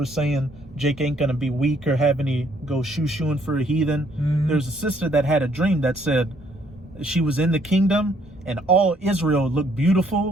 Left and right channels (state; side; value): normal; both; correlation 0.67